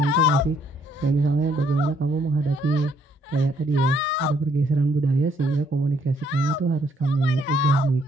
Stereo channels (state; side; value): normal; both; correlation 0.68